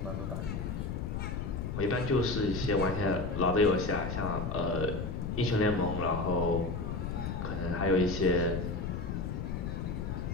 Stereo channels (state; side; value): noise; left; rumble, 3 dB below the sound